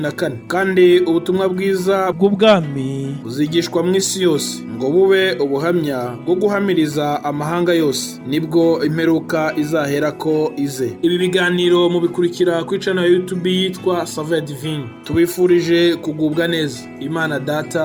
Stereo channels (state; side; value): identical; both; correlation 1.00